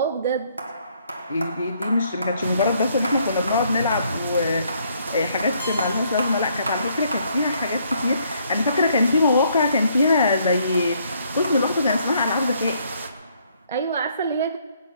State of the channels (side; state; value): both; inverted; correlation -0.68